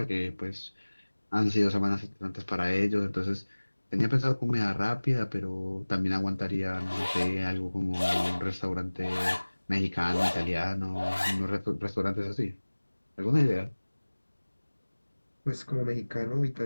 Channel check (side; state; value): both; inverted; correlation -1.00